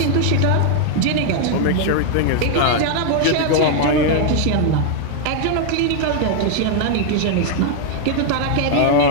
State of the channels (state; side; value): different; both; correlation 0.00